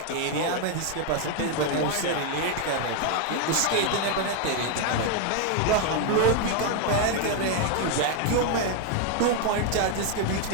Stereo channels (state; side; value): different; both; correlation 0.01